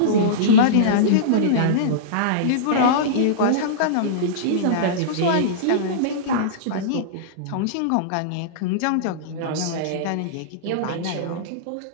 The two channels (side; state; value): both; different; correlation -0.04